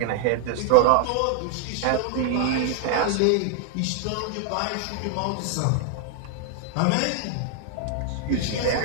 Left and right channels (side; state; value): both; different; correlation 0.00